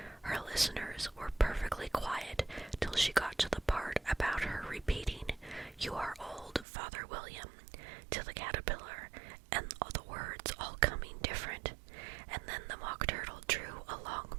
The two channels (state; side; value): drops out; left; at 6.7 s